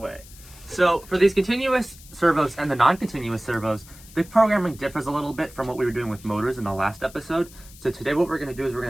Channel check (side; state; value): left; noise; hiss, 21 dB below the sound